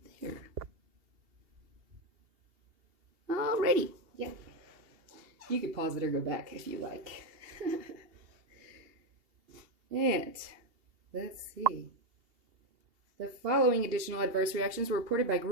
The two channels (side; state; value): left; late; 2.8 ms